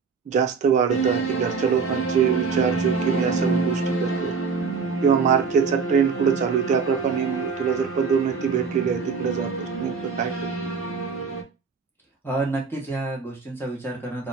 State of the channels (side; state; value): left; quieter; 5.4 dB